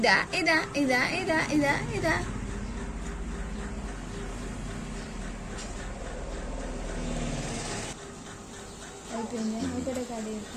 అయిపోయింది ఒకటే కాదు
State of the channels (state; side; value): identical; both; correlation 1.00